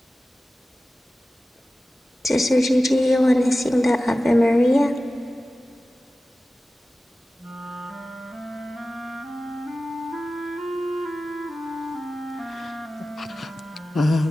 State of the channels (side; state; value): both; normal; correlation 0.95